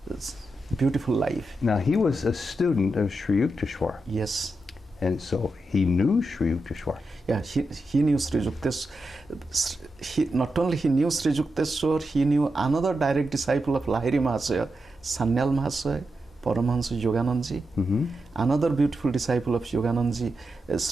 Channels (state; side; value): normal; both; correlation 0.87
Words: beautiful life. Now, he was a student of Sri Yukteswar. Yes. And so he knew Sri Yukteswar. Yeah, he knew Sri Yukteswar. Not only he knew Sri Yukteswar, he knew another direct disciple of Lahiri Mahasaya, Sanyal Mahasaya, Paramahamsa Yoganandaji. Another beautiful disciple of Yoganandaji,